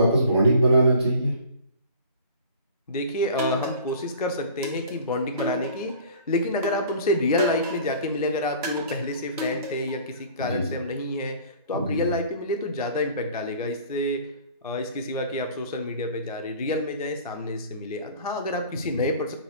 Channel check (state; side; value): inverted; both; correlation -0.46